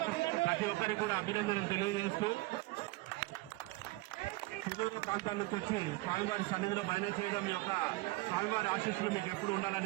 ప్రతి ఒక్కరికి కూడా అభినందనలు తెలియజేస్తూ సుదూర ప్రాంతాల నుంచి వచ్చి స్వామివారి సన్నిధిలో భజన చేయడం యొక్క స్వామివారి ఆశీస్సులు మీకు ఎప్పుడు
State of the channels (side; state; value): left; quieter; 21.4 dB